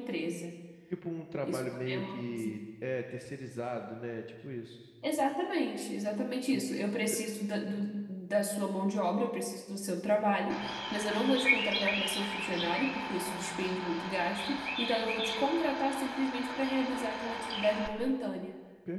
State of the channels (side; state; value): both; identical; correlation 1.00